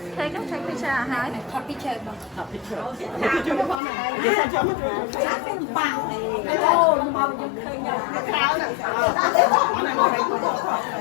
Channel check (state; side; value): drops out; right; at 3.8 s